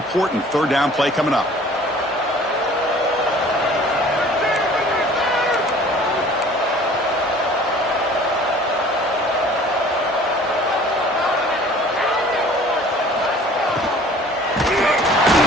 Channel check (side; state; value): both; normal; correlation 0.49